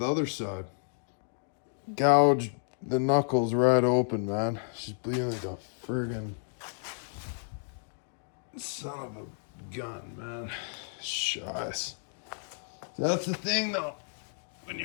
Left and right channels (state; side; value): silent; right; digital silence